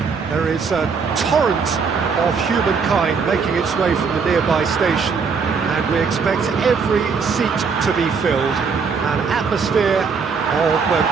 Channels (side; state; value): left; quieter; 5.5 dB